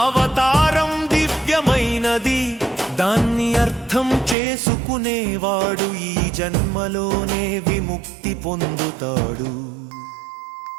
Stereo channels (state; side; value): drops out; left; at 4.4 s